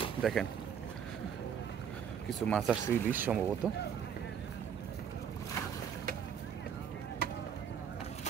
দেখেন, কিছু মাছ আসছে ইলিশ সম্ভবত।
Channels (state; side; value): quieter; left; 8.0 dB